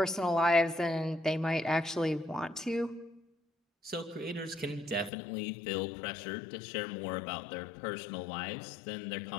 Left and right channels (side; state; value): right; drops out; at 5.1 s